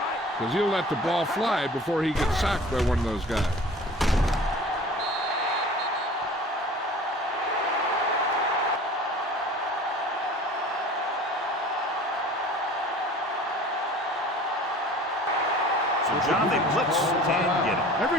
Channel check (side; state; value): both; normal; correlation 0.44